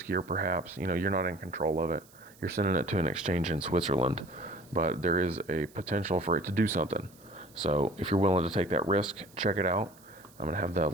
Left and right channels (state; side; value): noise; right; hiss, 26 dB below the sound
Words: perhaps. You know, you're not in control of it. You're sending it to an exchange in Switzerland, but there is a potential for it to do something. So if you're willing to take that risk, check it out. I'm going to have the